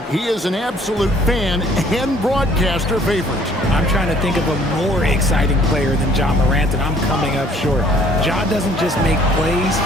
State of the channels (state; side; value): normal; both; correlation 0.58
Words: He is an absolute fan and broadcaster favorite. I'm trying to think of a more exciting player than Ja Morant, and I'm coming up short. Ja doesn't just make plays,